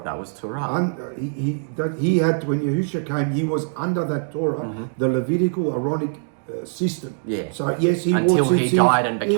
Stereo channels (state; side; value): silent; left; digital silence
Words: That was Torah. He had, when Yahushua came, he was under that Torah, the Levitical Aaronic system. Yeah. So yes, he Until wore he tzitzit, died and